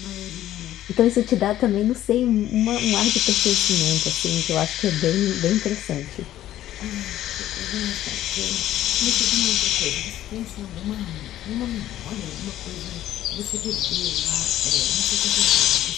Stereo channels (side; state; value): right; quieter; 13.0 dB